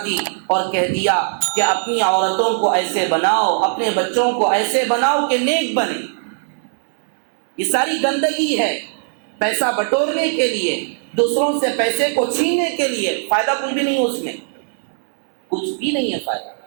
دی اور کہہ دیا کہ اپنی عورتوں کو ایسے بناؤ، اپنے بچوں کو ایسے بناؤ کہ نیک بنے۔ یہ ساری گندگی ہے، پیسہ بٹورنے کے لیے، دوسروں سے پیسے کو چھیننے کے لیے، فائدہ کچھ بھی نہیں ہے اس میں، کچھ بھی نہیں ہے فائدہ۔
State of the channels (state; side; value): silent; left; digital silence